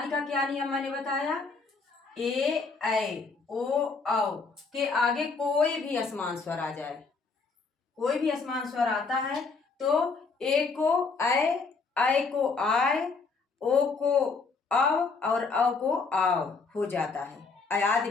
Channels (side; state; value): right; quieter; 4.5 dB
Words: का क्या नियम मैंने बताया? ए ऐ ओ औ के आगे कोई भी असमान स्वर आ जाए, कोई भी असमान स्वर आता है तो ए को ऐ को आय, ओ को अव और औ को आव हो जाता है। अयादि